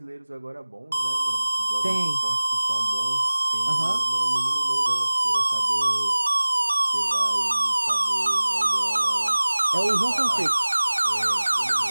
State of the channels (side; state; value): both; inverted; correlation -1.00